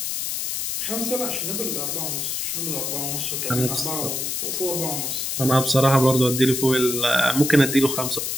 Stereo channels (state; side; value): noise; left; hiss, 2 dB below the sound